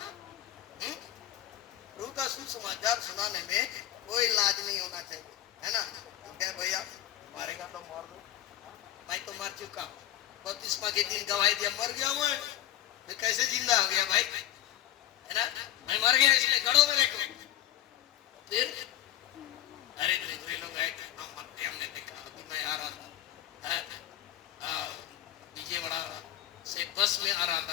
प्रभु का सुसमाचार सुनाने में कोई लाज नहीं होना चाहिए, है ना। क्या भैया मारेगा तो मार दो, मैं तो मर चुका, बपतिस्मा के दिन गवाही दिया, मर गया मैं, फिर कैसे जिंदा हो गया भाई, है ना। मैं मर गया इसलिए गड़ों में रखो, फिर अरे दूसरे लोग आए थे, हम मरते, हमने देखा। अभी मैं आ रहा था विजयवाड़ा से बस में आ रहा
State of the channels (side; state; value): right; quieter; 12.8 dB